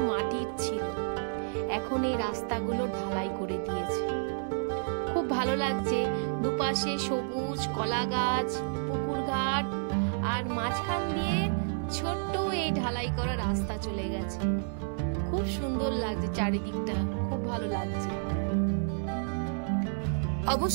মাটির ছিল, এখন এই রাস্তাগুলো ঢালাই করে দিয়েছে। খুব ভালো লাগছে, দুপাশে সবুজ, কলা গাছ, পুকুর ঘাট, আর মাঝখান দিয়ে ছোট্ট এই ঢালাই করা রাস্তা চলে গেছে। খুব সুন্দর লাগছে চারিদিকটা, খুব ভালো লাগছে।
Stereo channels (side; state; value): left; silent; 58 dB below the other